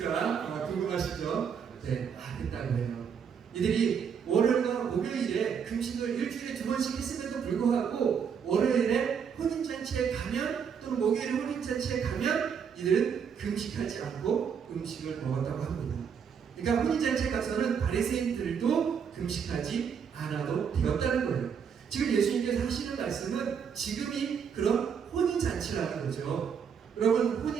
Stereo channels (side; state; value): left; quieter; 7.1 dB